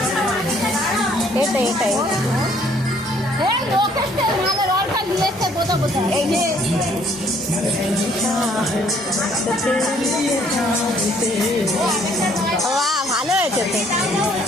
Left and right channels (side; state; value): both; normal; correlation 0.62